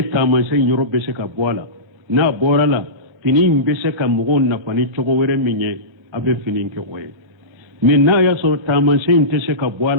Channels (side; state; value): left; late; 1.3 ms